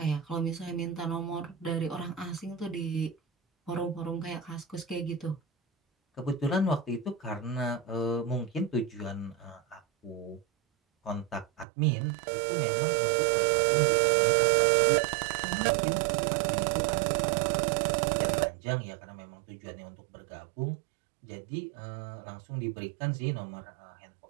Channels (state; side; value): drops out; left; at 11.7 s